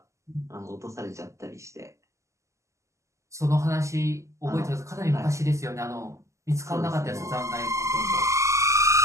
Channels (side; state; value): left; late; 0.14 ms